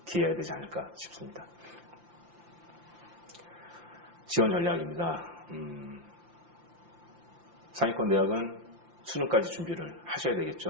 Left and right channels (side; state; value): left; late; 5.8 ms